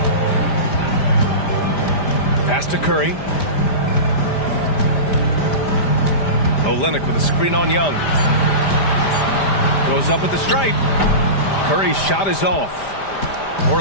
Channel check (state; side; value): late; right; 5.0 ms